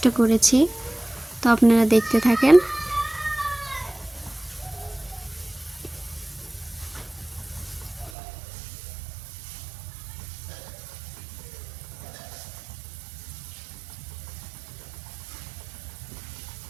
করেছি। তো আপনারা দেখতে থাকেন।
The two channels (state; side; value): drops out; left; at 8.1 s